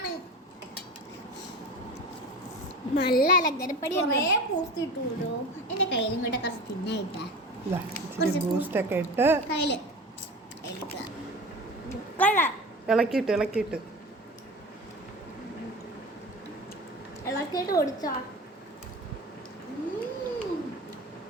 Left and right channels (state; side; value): normal; both; correlation 0.33